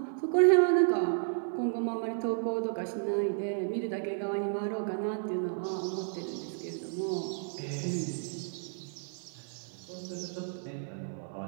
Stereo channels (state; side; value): silent; left; 56 dB below the other